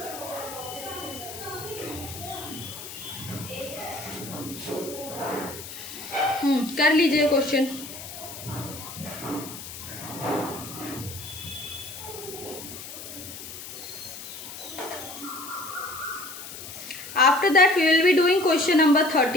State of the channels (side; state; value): left; noise; hiss, 11 dB below the sound